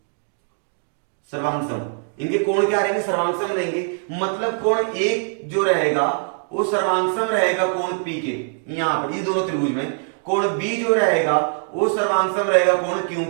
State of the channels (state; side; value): silent; left; 55 dB below the other